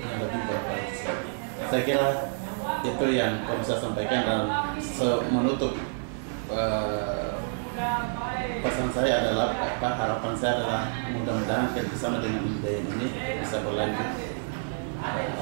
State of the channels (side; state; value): left; silent; digital silence